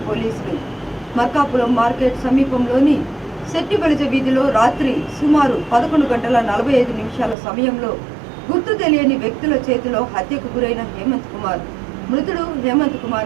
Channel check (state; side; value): drops out; left; at 7.4 s